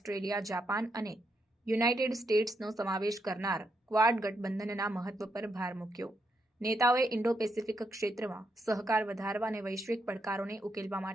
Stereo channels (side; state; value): both; normal; correlation 0.80